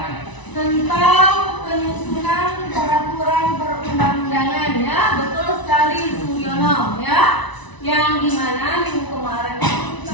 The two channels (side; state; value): right; late; 1.0 ms